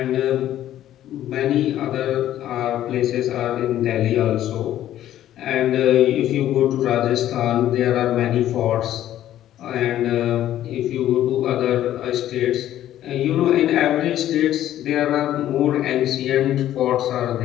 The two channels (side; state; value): right; quieter; 12.4 dB